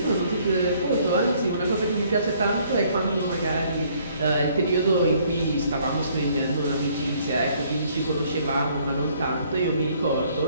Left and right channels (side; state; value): both; inverted; correlation -0.63